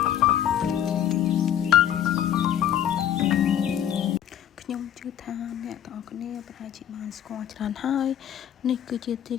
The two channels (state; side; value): quieter; right; 10.2 dB